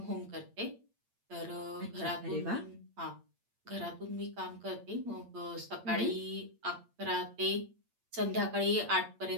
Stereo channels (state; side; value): late; left; 8.7 ms